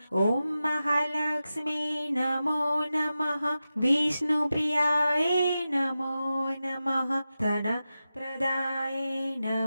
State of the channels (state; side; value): inverted; both; correlation -0.92